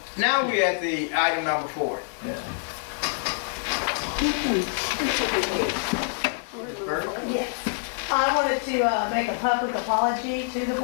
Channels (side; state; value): right; silent; digital silence